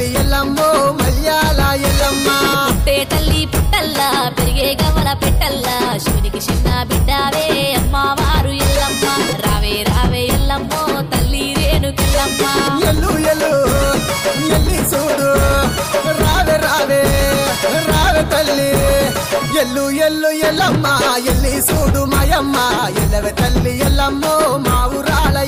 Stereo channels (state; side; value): identical; both; correlation 1.00